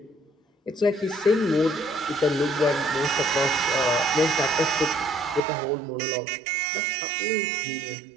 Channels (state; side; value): drops out; left; at 5.4 s